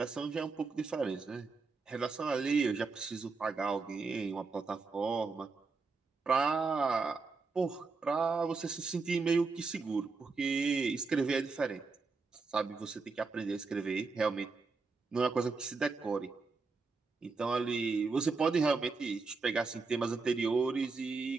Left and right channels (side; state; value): left; quieter; 4.3 dB